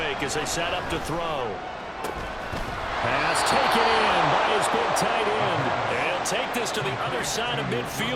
as they set up to throw. Pass taken in by his big tight end. They'll take this to the other side of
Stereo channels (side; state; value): both; identical; correlation 1.00